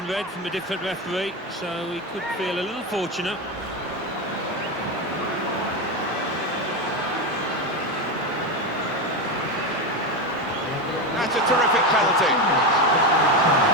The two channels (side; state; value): both; normal; correlation 0.15